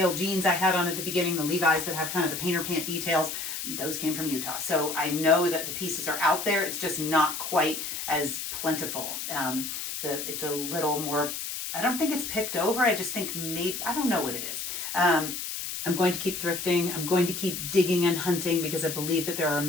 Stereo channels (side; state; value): left; noise; hiss, 5 dB below the sound